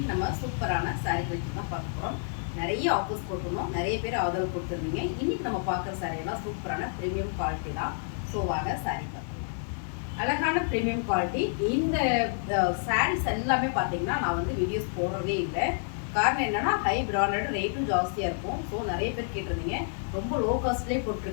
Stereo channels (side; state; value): right; silent; 59 dB below the other